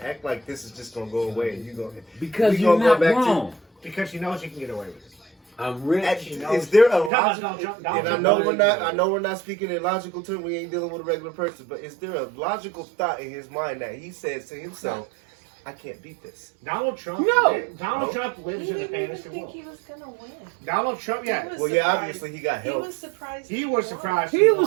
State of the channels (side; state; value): left; drops out; at 7.1 s